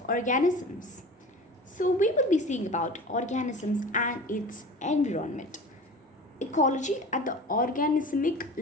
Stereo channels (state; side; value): normal; both; correlation 0.37